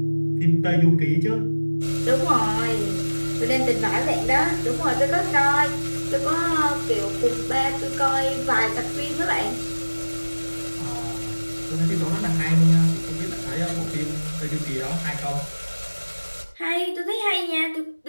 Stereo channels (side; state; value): both; inverted; correlation -1.00